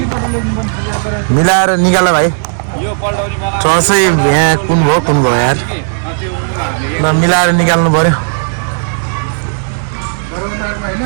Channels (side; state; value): left; silent; digital silence